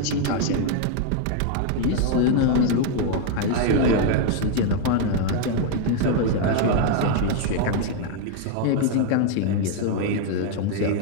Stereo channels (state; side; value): different; both; correlation 0.00